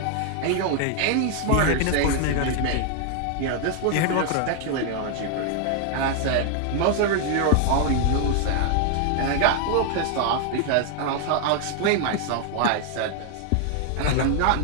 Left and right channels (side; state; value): both; different; correlation 0.00